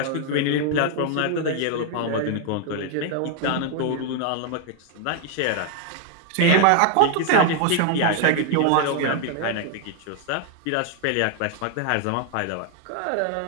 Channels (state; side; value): different; both; correlation 0.00